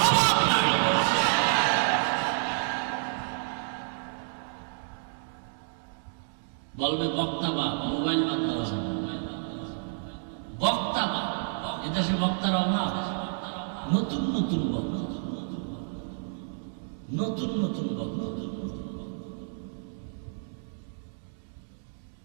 অভাব নাই। বলবে বক্তা বা মোবাইল বাদ দেওয়া যাবে, বক্তা বা এদেশে বক্তার অভাব। নতুন নতুন বক্তা, নতুন নতুন বক্তা।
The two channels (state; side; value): silent; left; digital silence